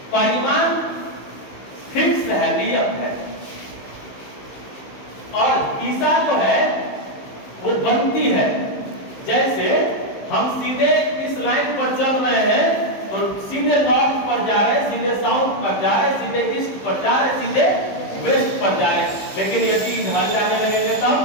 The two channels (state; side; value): late; right; 15 ms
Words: परिमाण फिक्स है, नियत है, और दिशा जो है वो बनती है। जैसे हम सीधे इस लाइन पर चल रहे हैं तो सीधे नॉर्थ पर जा रहे हैं, सीधे साउथ पर जा रहे हैं, सीधे ईस्ट पर जा रहे हैं, सीधे वेस्ट पर जा रहे हैं। लेकिन यदि इधर जाने लगेंगे